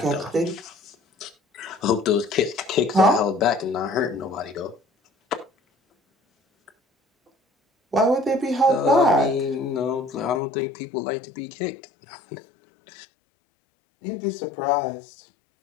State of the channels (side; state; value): right; drops out; at 10.4 s